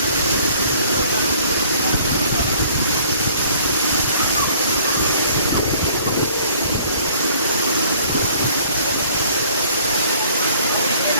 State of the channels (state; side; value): inverted; both; correlation -0.56